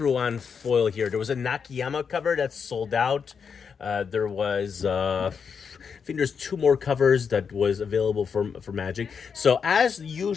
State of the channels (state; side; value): quieter; right; 6.3 dB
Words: on foil here. There was a Nakayama cover that's sold out. There was, I think there's 2 more covers that was available for Magik. So as